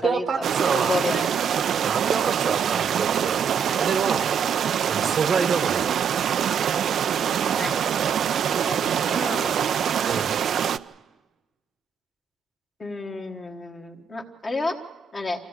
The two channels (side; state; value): left; quieter; 6.5 dB